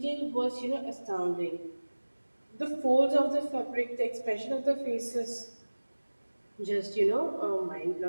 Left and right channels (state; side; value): inverted; both; correlation -1.00